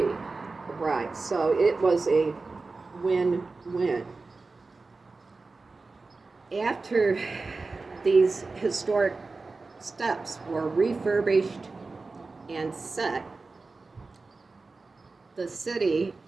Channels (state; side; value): quieter; left; 3.8 dB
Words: rise. So it was a win-win. After these historic steps were refurbished and set, the city